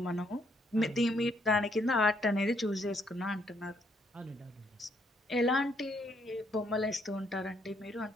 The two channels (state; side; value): normal; both; correlation 0.71